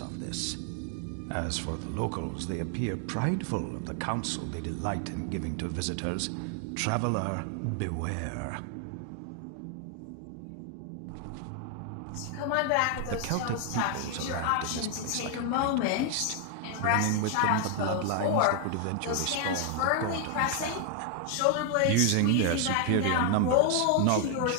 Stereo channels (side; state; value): both; different; correlation 0.00